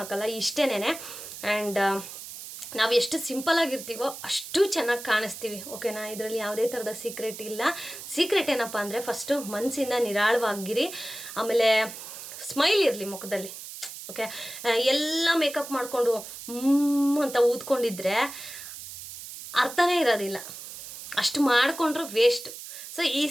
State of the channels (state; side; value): noise; right; hiss, 12 dB below the sound